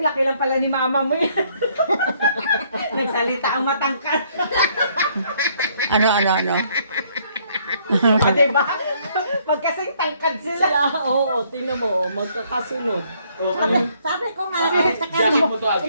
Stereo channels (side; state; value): both; inverted; correlation -0.66